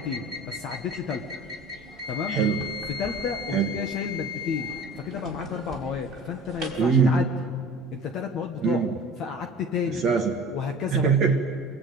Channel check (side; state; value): both; normal; correlation 0.41